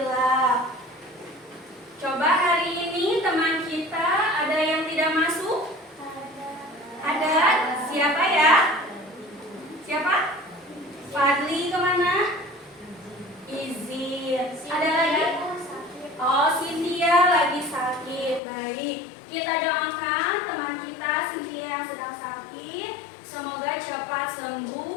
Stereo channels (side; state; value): right; drops out; at 18.4 s